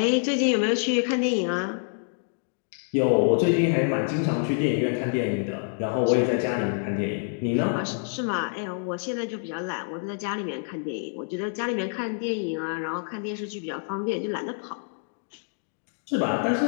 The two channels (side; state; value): right; silent; digital silence